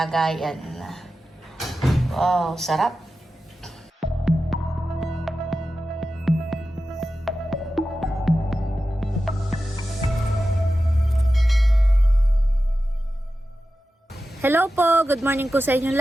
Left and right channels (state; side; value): normal; both; correlation 0.93